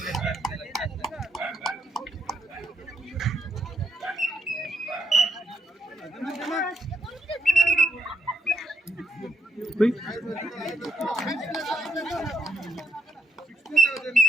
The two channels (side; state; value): both; normal; correlation 0.75